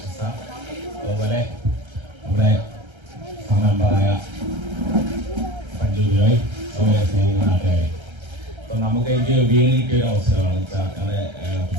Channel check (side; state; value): left; late; 1.3 ms